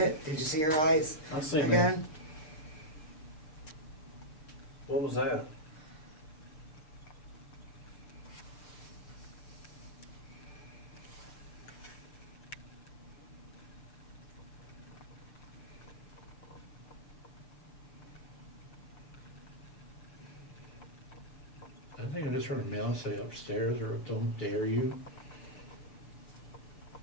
Did you see her eyes I seen that. again? What was that? I think I just heard a male say upstairs, or don't dare you.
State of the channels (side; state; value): right; late; 6.7 ms